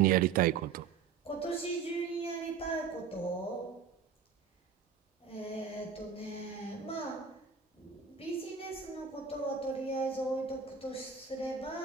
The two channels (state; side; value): quieter; left; 6.4 dB